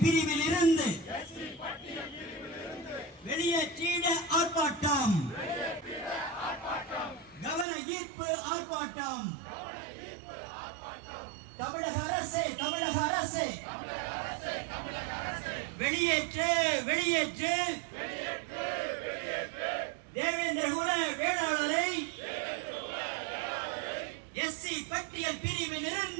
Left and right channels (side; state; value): left; drops out; at 7.7 s